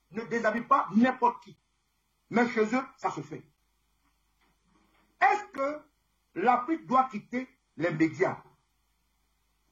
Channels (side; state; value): both; identical; correlation 1.00